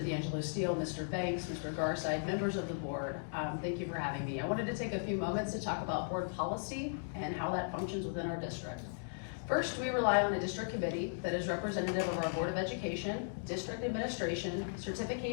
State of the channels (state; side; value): silent; right; digital silence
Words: D'Angelo Steele, Mr. Banks, Mr. Garside, members of the board. Thank you for having me. I wanted to take a few moments to talk about board policy and how that functions within our district. First, we rely on a district committee that is representative of our Board of Education, district administration,